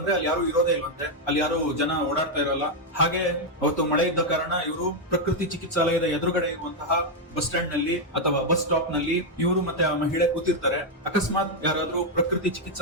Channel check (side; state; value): both; normal; correlation 0.00